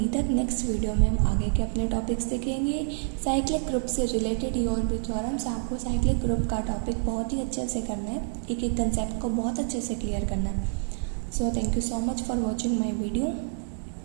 तक, नेक्स्ट वीडियो में हम आगे के अपने टॉपिक्स देखेंगे। साइक्लिक ग्रुप से रिलेटेड और भी थ्योरम्स, आपको साइक्लिक ग्रुप का टॉपिक बहुत ही अच्छे से करना है, एक एक कंसेप्ट को बहुत अच्छे से क्लियर करना है। So thank you so much for watching my video.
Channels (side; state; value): left; silent; 60 dB below the other